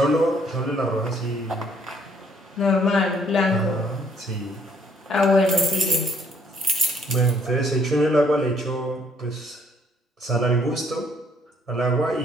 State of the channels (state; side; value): normal; both; correlation 0.65